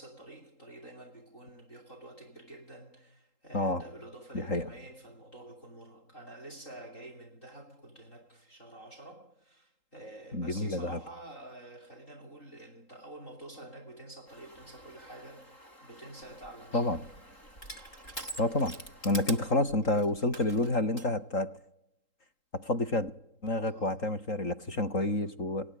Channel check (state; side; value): late; right; 3.8 ms